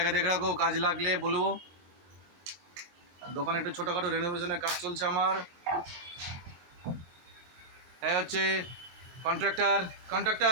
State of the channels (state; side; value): late; left; 23 ms